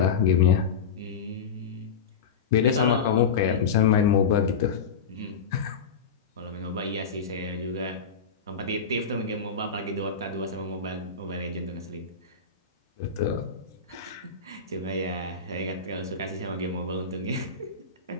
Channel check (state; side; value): quieter; right; 5.7 dB